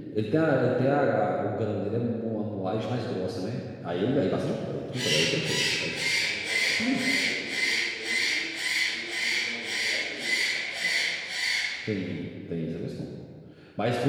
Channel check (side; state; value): both; identical; correlation 1.00